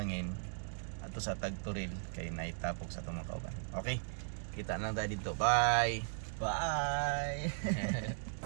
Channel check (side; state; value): left; silent; digital silence